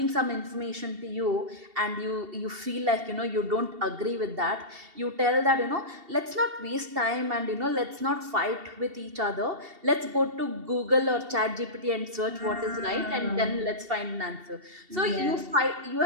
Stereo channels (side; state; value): left; late; 2.7 ms